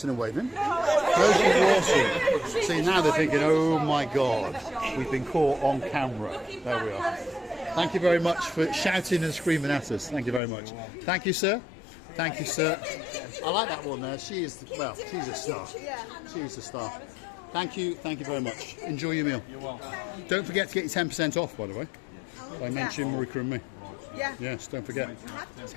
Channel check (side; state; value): right; drops out; at 10.4 s